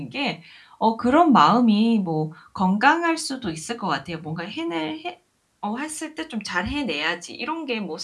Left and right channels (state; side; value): identical; both; correlation 1.00